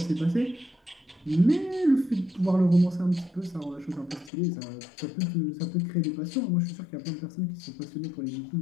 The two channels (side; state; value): right; drops out; at 4.3 s